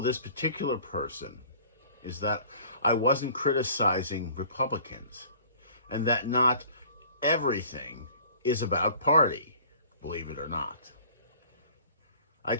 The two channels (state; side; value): inverted; both; correlation -0.49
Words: this particular person is that I wasn't criticizing Republicans, and that not everything is about party, believe it or not. I